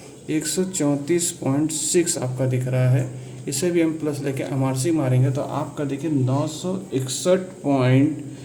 134.6 आपका दिख रहा है। इसे भी m प्लस लेके MRC मारेंगे तो आपका देखिए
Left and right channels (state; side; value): identical; both; correlation 1.00